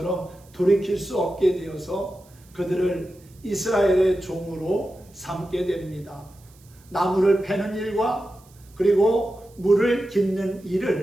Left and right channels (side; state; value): right; noise; hiss, 29 dB below the sound